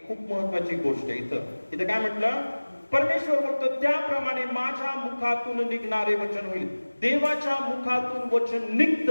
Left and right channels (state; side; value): inverted; both; correlation -1.00